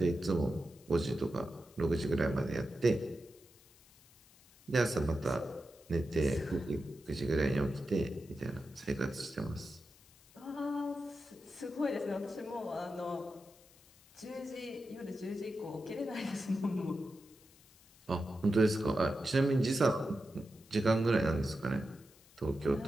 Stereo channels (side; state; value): left; noise; hiss, 26 dB below the sound